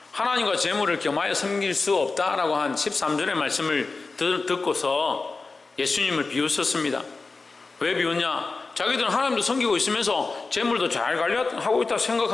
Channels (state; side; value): quieter; right; 3.9 dB